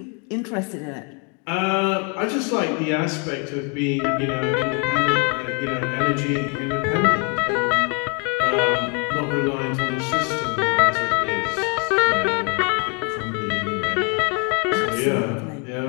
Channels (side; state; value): right; quieter; 32.6 dB